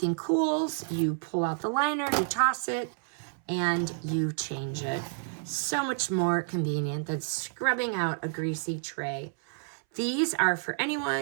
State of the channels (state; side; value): silent; left; 58 dB below the other